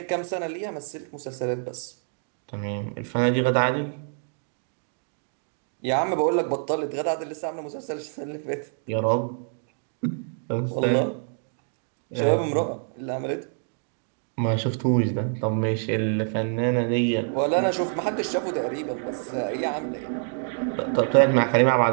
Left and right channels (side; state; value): left; silent; digital silence